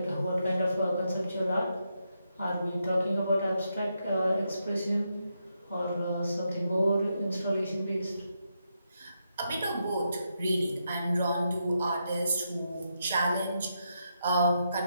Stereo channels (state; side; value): inverted; both; correlation -0.82